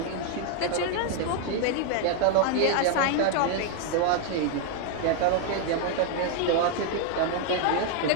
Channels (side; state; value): both; different; correlation 0.00